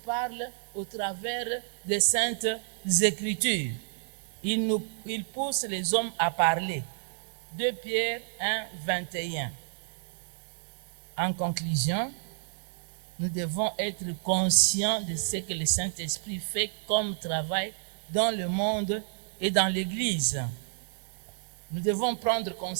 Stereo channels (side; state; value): left; silent; digital silence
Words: au travers des Saintes Écritures. Il pousse les hommes à parler. 2 Pierre 1, 21. En conclusion, nous devons être conscients de ce que le Saint-Esprit fait comme travail dans le monde et dans l'Église. Nous devons prendre